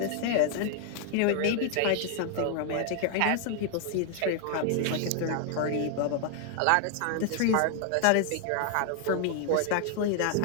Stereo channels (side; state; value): both; different; correlation 0.00